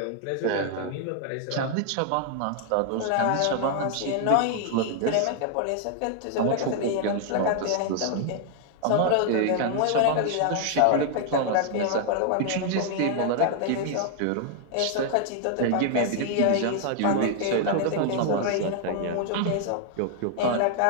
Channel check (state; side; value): different; both; correlation 0.00